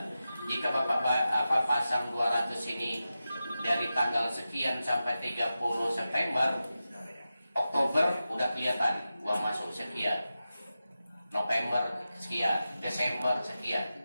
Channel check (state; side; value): inverted; both; correlation -0.93